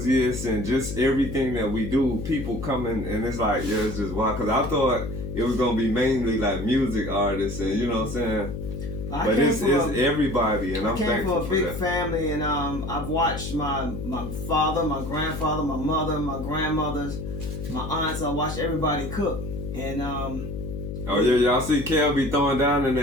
and just everything that we do. People coming and it's like, yeah, it's just wild. Because I thought it was gonna be mainly like music artists and you know what I'm saying. But it's everybody, and I'm thankful for that. I came from a big family, and I've watched my father, my grandfather, my mother, my grandmothers, my aunts. I watched everybody cook, and oh yeah, y'all see Kel be throwing down in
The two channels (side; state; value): left; noise; hum, 6 dB below the sound